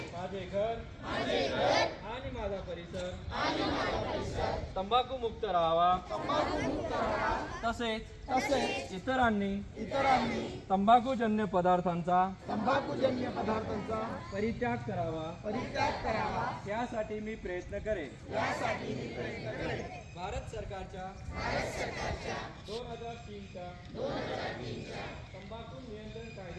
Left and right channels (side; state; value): both; identical; correlation 1.00